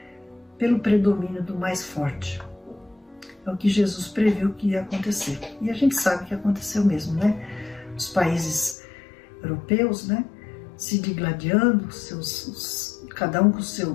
pelo predomínio do mais forte. É o que Jesus previu que ia acontecer. E a gente sabe que aconteceu mesmo, né? Os países europeus, né, se digladiando, cada um com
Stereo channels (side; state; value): right; drops out; at 8.8 s